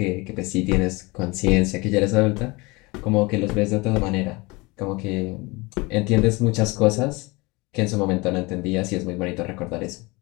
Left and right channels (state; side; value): quieter; right; 24.7 dB